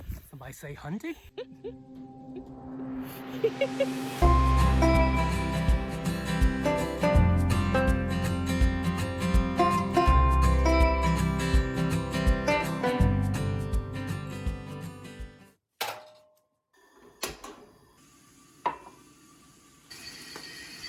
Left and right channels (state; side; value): identical; both; correlation 1.00